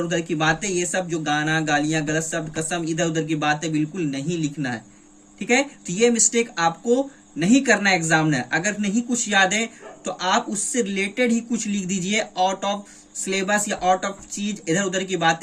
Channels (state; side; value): identical; both; correlation 1.00